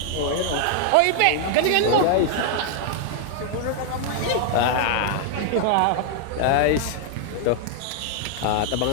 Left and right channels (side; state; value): both; different; correlation 0.00